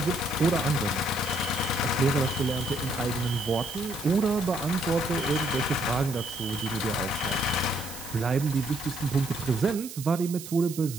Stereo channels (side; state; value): right; noise; hiss, 12 dB below the sound